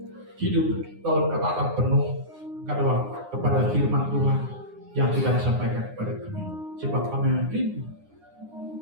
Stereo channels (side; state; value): left; late; 9.7 ms